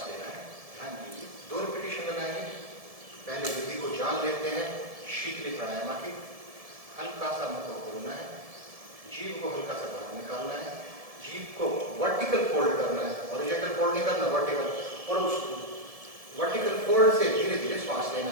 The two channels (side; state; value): left; late; 1.7 ms